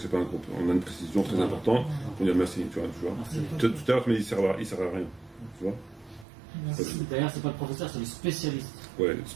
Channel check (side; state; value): left; drops out; at 6.2 s